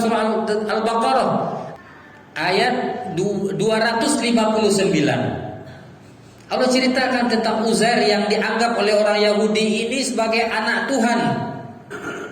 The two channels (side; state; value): both; identical; correlation 1.00